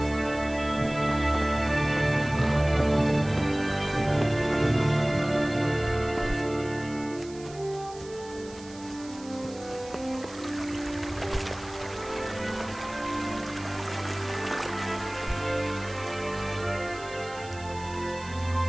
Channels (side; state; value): right; noise; hiss, 19 dB below the sound